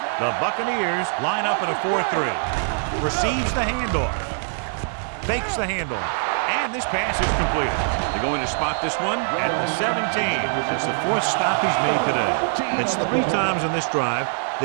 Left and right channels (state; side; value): silent; left; 63 dB below the other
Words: The Buccaneers line up in a 4-3. Receives the handoff. Fakes the handoff. And this pass is completed. They're going to spot this one at the 17. It's the 4th stop he's made today. It's 3 times in this drive